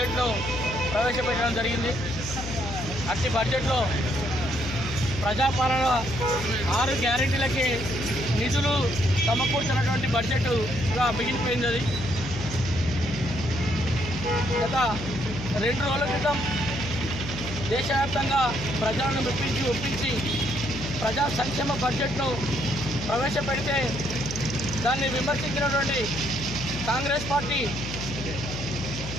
ప్రవేశపెట్టడం జరిగింది. అట్టి బడ్జెట్లో ప్రజాపాలన 6 గ్యారెంటీలకి నిధులు సమకూర్చినటువంటి బడ్జెట్గా మిగిలిపోయింది. అది గత 2 రోజుల క్రితం దేశవ్యాప్తంగా ప్రజలను ఒప్పించి ప్రజా సంక్షేమ బడ్జెట్ను ప్రవేశపెడితే దాన్ని విమర్శించినటువంటి కాంగ్రెస్ పార్టీ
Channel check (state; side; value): noise; left; hum, 8 dB below the sound